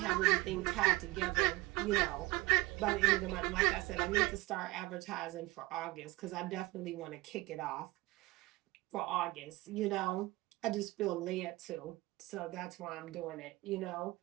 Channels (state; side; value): quieter; left; 21.2 dB